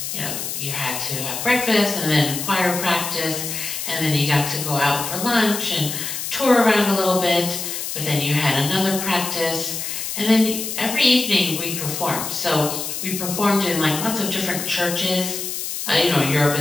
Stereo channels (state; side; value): noise; left; hiss, 5 dB below the sound